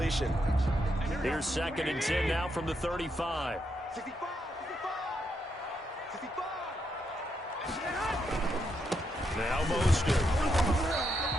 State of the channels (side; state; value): both; normal; correlation 0.80